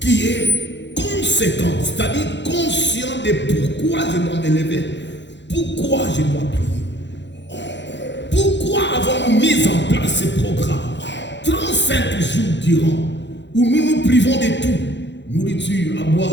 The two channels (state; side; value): late; right; 0.52 ms